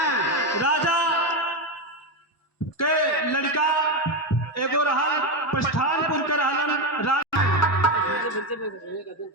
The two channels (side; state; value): right; late; 1.1 ms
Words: राजा के लड़का एगो रहल प्रस्थानपुर के रहलन